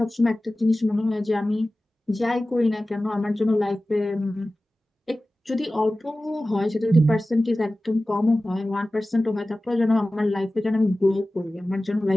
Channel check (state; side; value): normal; both; correlation 0.96